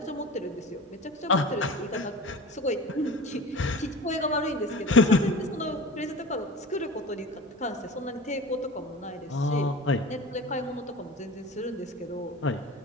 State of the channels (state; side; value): normal; both; correlation 0.35